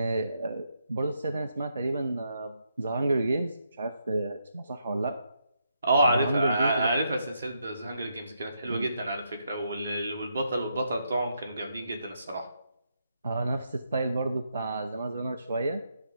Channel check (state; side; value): inverted; both; correlation -0.79